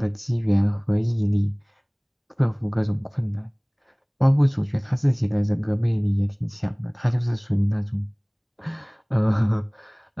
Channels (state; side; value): identical; both; correlation 1.00